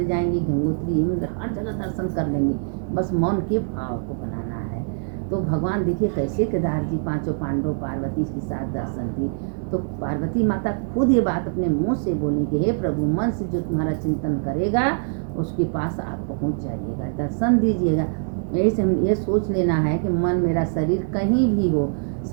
जाएंगे, गंगोत्री यमुना हर जगह दर्शन कर लेंगे। बस मन के भाव को बनाना है। तो भगवान देखिए कैसे केदार जी पांचों पांडव पार्वती के साथ दर्शन दिए। तो पार्वती माता खुद ये बात अपने मुंह से बोली कि हे प्रभु, मन से जो तुम्हारा चिंतन करेगा उसके पास आप पहुंच जाइएगा, दर्शन दीजिएगा। ऐसे हम ये सोच लेना है कि मन मेरा, शरीर कहीं भी हो,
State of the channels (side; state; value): left; silent; digital silence